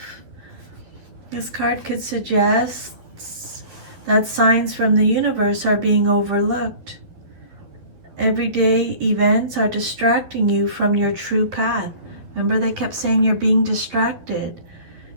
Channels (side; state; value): left; late; 11 ms